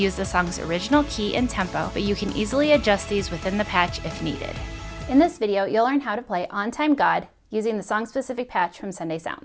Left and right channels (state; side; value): identical; both; correlation 1.00